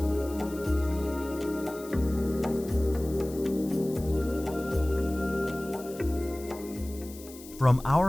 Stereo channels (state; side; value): noise; left; hiss, 18 dB below the sound